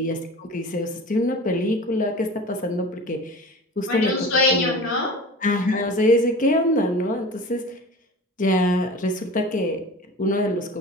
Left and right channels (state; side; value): normal; both; correlation 0.36